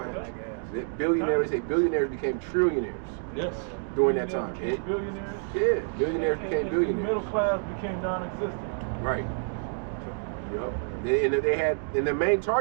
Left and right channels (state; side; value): silent; left; 59 dB below the other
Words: Billionaires, they say billionaires became trillionaires. Yes. During that time. Billionaires. Yeah, billionaires became billionaires. Middle class became non-existent. Right. Yep. And they had, and the main